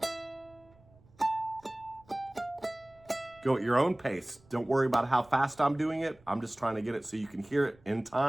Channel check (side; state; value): right; noise; rumble, 29 dB below the sound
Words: Go at your own pace. Don't worry about how fast I'm doing it. I'm just trying to get it so you can hear it in